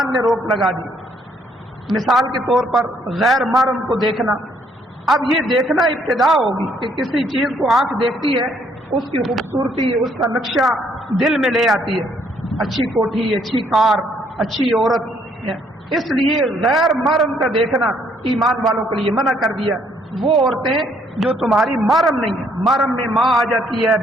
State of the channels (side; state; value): both; normal; correlation 0.67